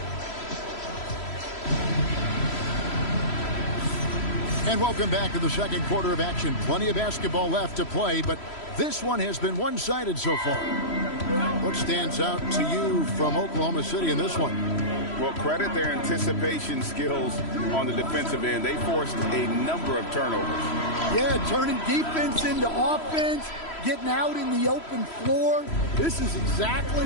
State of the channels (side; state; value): right; late; 3.0 ms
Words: And welcome back to the second quarter of action. Plenty of basketball left to play, but this one has been one-sided so far. What stands out to you from Oklahoma City in this one? Well, credit their anticipation skills on the defensive end. They forced a number of turnovers. Yeah, turning defense into offense, getting out in the open floor. This is